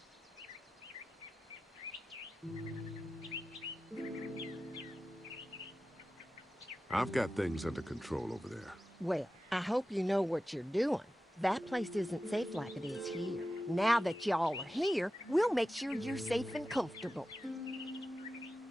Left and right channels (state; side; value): normal; both; correlation 0.93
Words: I've got things under control over there. Well, I hope you know what you're doing. That place isn't safe like it is here. Now that y'all are here, we'll make sure you're safe and comfortable.